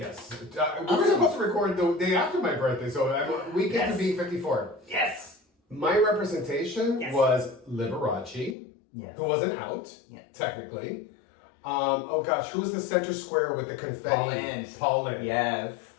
We were supposed to record the day after my birthday, so we get to be 54. Yes! My representation was Liberace, yes. who wasn't out, technically. Oh gosh, who was the center square with the confetti? Paul Lynde. Yes.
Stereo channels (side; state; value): right; drops out; at 8.6 s